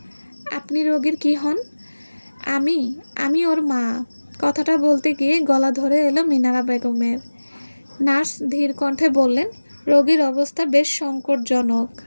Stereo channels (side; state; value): both; inverted; correlation -1.00